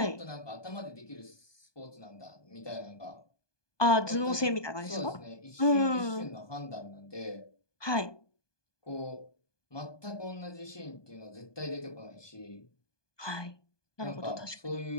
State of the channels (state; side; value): late; right; 1.2 ms